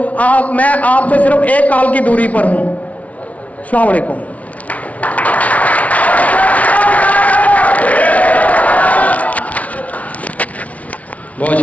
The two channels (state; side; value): late; right; 0.068 ms